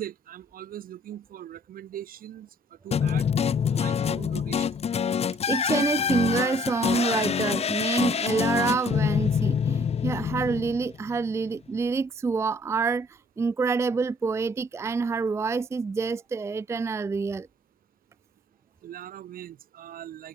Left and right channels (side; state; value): both; normal; correlation 0.60